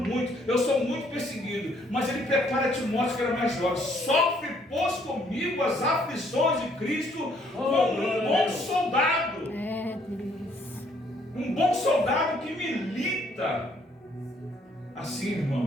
eu sou muito perseguido. Mas ele prepara Timóteo, que era mais jovem: sofre, pois, comigo as aflições de Cristo como um bom soldado. É, Deus. Um bom soldado que milita. Assim,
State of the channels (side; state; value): both; normal; correlation 0.65